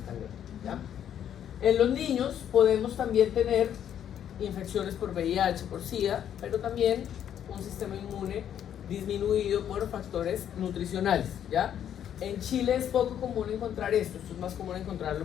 tan graves, ¿ya? En los niños podemos también tener infecciones por VIH, por SIDA, pero también un sistema inmune disminuido por factores nutricionales, ¿ya? En Chile es poco común encontrar esto es más común encontrarlo,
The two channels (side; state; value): right; quieter; 9.7 dB